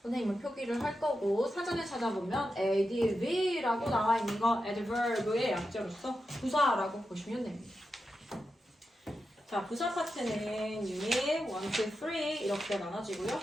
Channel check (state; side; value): normal; both; correlation 0.89